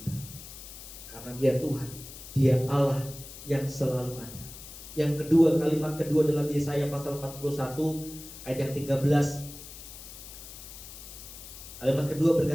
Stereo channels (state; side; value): noise; left; hiss, 14 dB below the sound